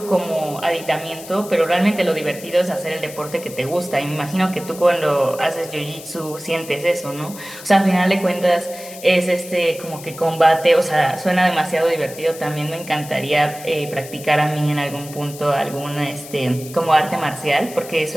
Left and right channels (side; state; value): left; noise; hiss, 15 dB below the sound